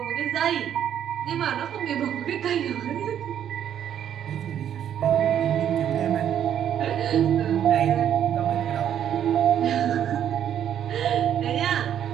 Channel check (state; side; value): quieter; left; 9.8 dB